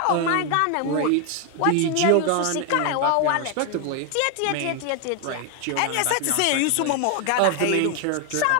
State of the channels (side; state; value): both; different; correlation 0.01